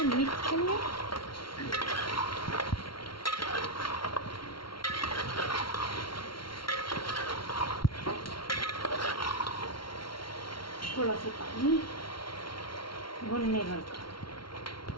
मिक्स कर ले। थोड़ा सा पानी भूनने भर का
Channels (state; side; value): late; right; 0.74 ms